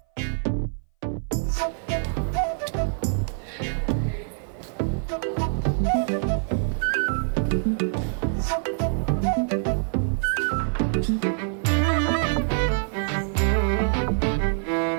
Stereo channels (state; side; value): silent; left; 58 dB below the other